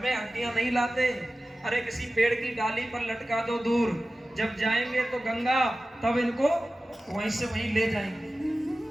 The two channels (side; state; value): both; normal; correlation 0.95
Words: हड्डियां नहीं लाते, अरे किसी पेड़ की डाली पर लटका दो दूर, जब जाएंगे तो गंगा तब इनको वहीं से वहीं ले जाएंगे।